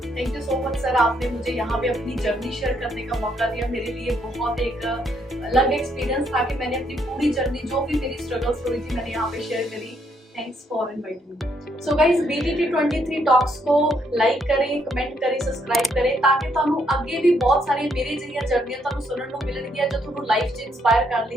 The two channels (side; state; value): both; normal; correlation 0.73